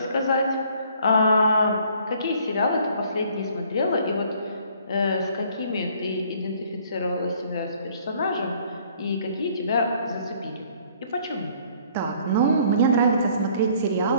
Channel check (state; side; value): inverted; both; correlation -0.59